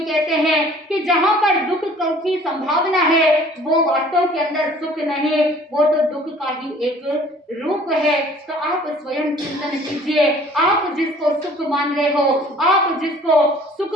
हैं कि जहां पर दुख की संभावना है, वो वास्तव के अंदर सुख नहीं, वो तो दुख का ही एक रूप है। तो आप स्वयं चिंतन कीजिए, आप जिसको सुख मान रहे हो, आप जिसको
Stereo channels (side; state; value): both; normal; correlation 0.52